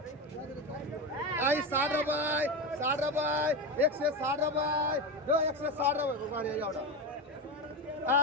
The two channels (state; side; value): normal; both; correlation 0.18